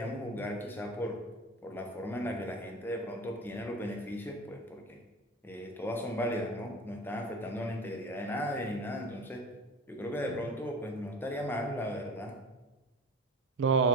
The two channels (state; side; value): normal; both; correlation 0.33